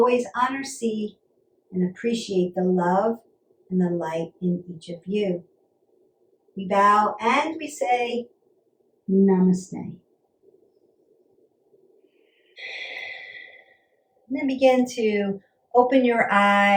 honor, see, and appreciate the love and the light in each of you. We bow and we say, Namaste. And then begin to open your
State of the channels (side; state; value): both; identical; correlation 1.00